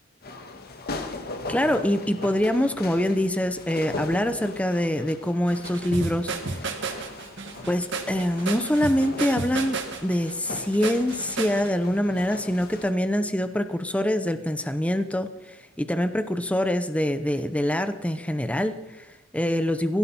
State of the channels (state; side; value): normal; both; correlation 0.84